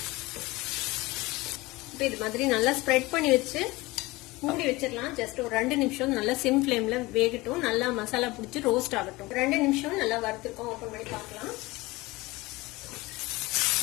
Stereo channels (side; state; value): right; quieter; 21.2 dB